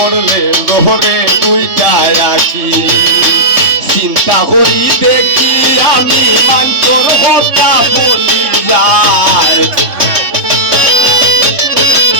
ঘরে দুইটা রাখি চিন্তা করি দেখি আমি মানতর কথা বলি যায়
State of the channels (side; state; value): left; late; 3.6 ms